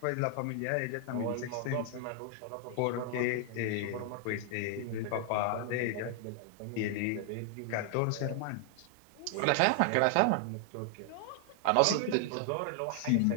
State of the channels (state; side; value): different; both; correlation 0.00